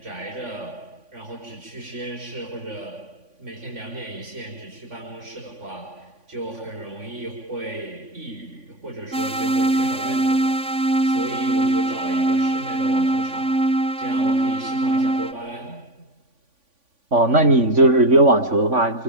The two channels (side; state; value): left; late; 3.5 ms